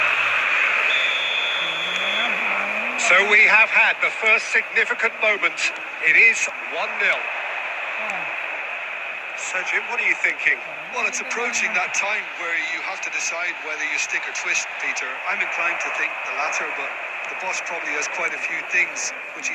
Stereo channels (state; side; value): identical; both; correlation 1.00